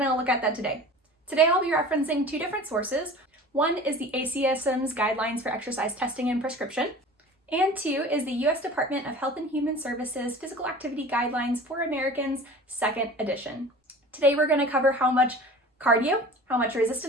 look at that today. Today I'll be referencing two different sources. One is the ACSM's Guidelines for Exercise Testing and Prescription, and two is the U.S. Department of Health and Human Services Physical Activity Guidelines for Americans, 2nd edition. Today we're gonna cover how much cardio, how much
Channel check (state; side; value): normal; both; correlation 0.40